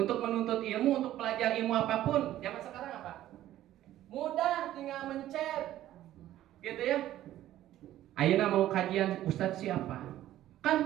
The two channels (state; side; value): quieter; left; 13.5 dB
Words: menuntut ilmu, untuk belajar ilmu apapun zaman sekarang apa, mudah, tinggal mencet gitu ya. Ayeuna mau kajian Ustadz siapa,